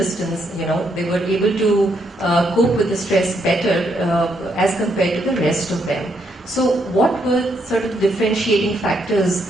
They were able to cope with the stress better as compared to the rest of them. So what were sort of differentiating factors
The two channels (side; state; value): both; normal; correlation 0.75